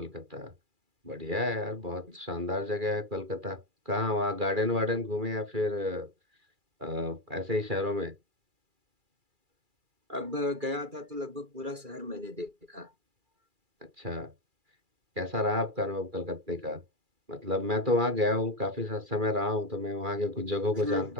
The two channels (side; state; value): left; late; 2.4 ms